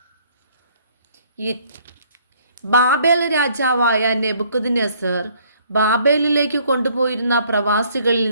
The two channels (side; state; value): both; inverted; correlation -0.62